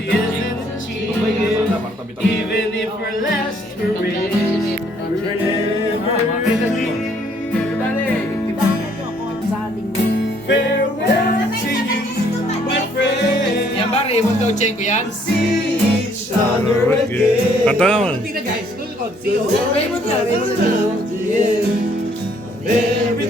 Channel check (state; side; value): normal; both; correlation 0.64